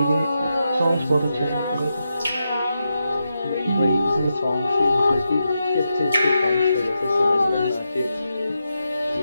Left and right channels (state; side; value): inverted; both; correlation -0.87